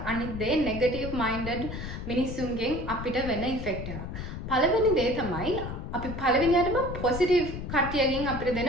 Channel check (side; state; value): left; noise; rumble, 7 dB below the sound